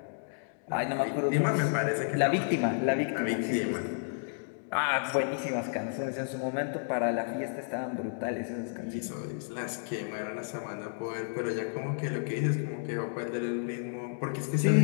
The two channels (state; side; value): silent; right; digital silence